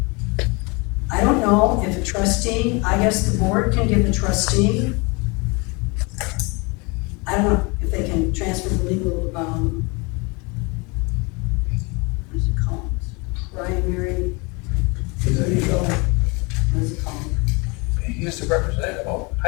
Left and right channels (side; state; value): right; quieter; 28.6 dB